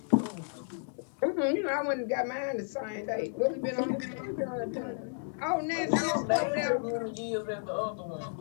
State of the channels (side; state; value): right; silent; 56 dB below the other